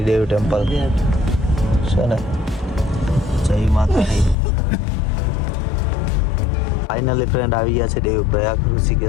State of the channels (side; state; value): right; drops out; at 4.4 s